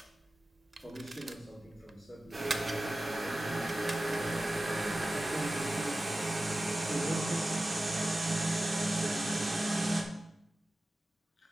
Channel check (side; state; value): both; normal; correlation 0.95